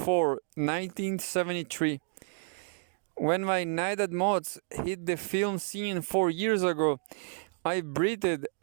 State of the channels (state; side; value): silent; left; digital silence